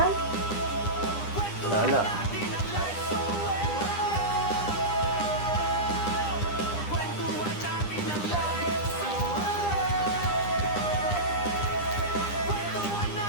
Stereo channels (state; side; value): late; right; 9.9 ms